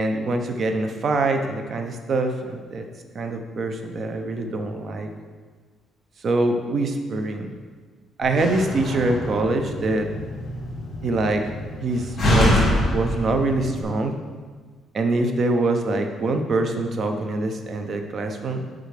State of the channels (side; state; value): both; normal; correlation 0.74